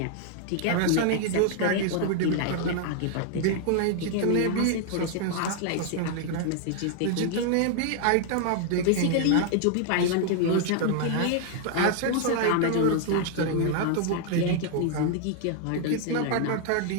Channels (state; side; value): different; both; correlation 0.00